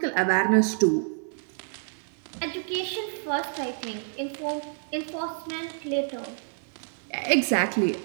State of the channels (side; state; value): left; silent; 59 dB below the other